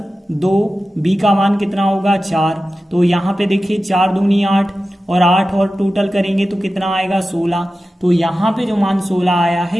2, बी का मान कितना होगा 4। तो यहाँ पे देखिए 4 दूनी 8 और 8 और टोटल करेंगे तो कितना आएगा 16। तो यहाँ पे जो मान 16 आया है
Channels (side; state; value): both; normal; correlation 0.94